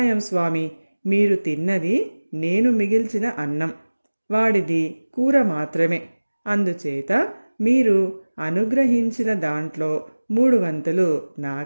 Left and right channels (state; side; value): inverted; both; correlation -1.00